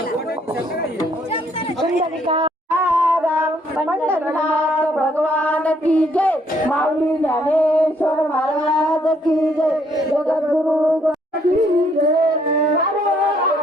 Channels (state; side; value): normal; both; correlation 0.68